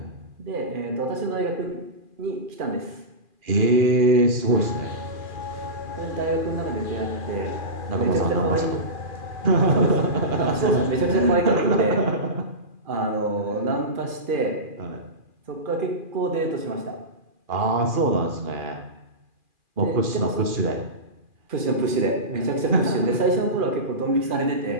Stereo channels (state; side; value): late; left; 2.4 ms